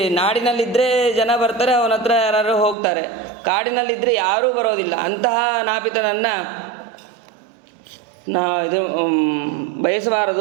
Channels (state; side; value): drops out; left; at 2.8 s